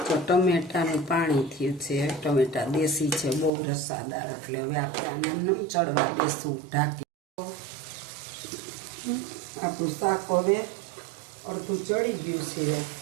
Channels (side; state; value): left; drops out; at 3.5 s